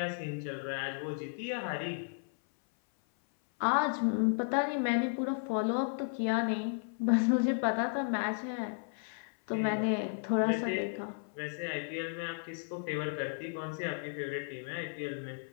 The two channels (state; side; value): silent; right; 55 dB below the other